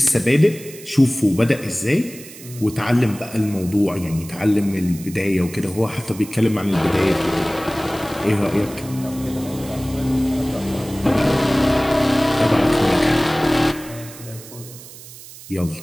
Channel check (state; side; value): noise; right; hiss, 17 dB below the sound